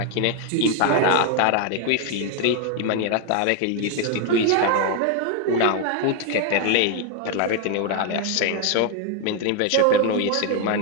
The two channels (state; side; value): different; both; correlation 0.01